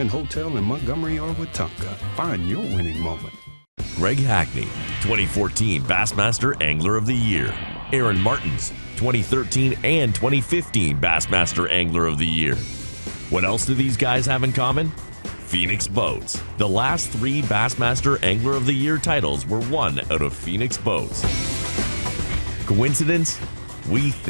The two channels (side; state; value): both; inverted; correlation -1.00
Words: Hotel in Montgomery or Wetumpka. Find your winning moment. Greg Hackney, 2014 Bassmaster Angler of the Year. Aaron Martins, 2013 and 2015 Bassmaster Angler of the Year. What else do these guys have in common? Phoenix Boats. The last 3 Bassmaster Angler of the Year titles were won out of Phoenix Boats. Coincidence? We